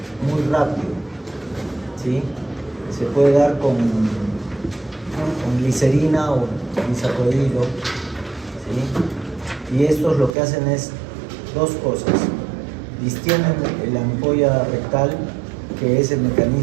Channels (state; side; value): drops out; left; at 10.4 s